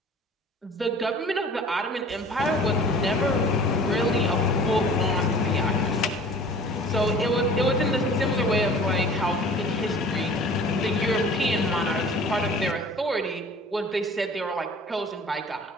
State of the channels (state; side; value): normal; both; correlation 0.46